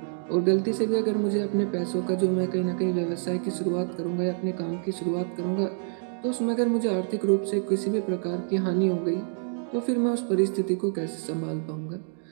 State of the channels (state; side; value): silent; left; digital silence